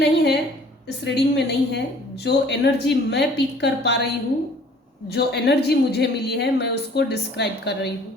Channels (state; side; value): normal; both; correlation 0.53